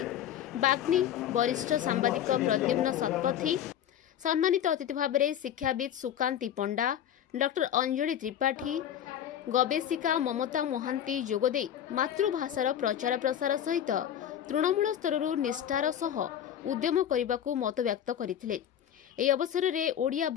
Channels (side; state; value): right; quieter; 10.1 dB